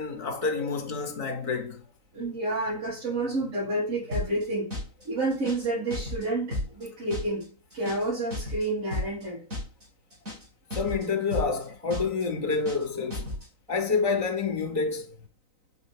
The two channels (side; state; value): left; late; 3.9 ms